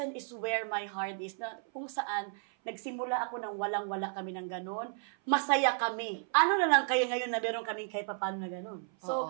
is where my heart is. Na, kung saan, nagsimula ako nang walang-wala kami ng ganon. Masaya kami. Ano na lang kayo ngayon na meron kaming kahit paano na ganon. So,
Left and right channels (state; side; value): silent; left; 56 dB below the other